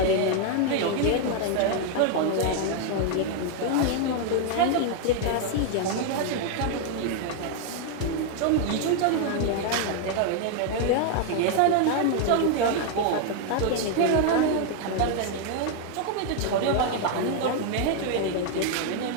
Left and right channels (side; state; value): both; different; correlation 0.00